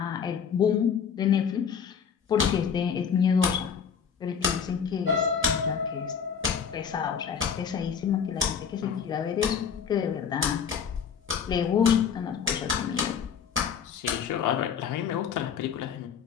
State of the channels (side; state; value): right; quieter; 7.1 dB